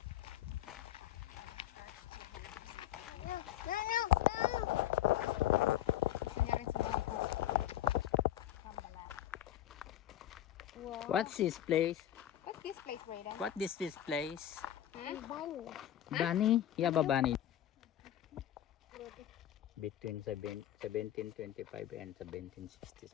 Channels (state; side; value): quieter; right; 12.1 dB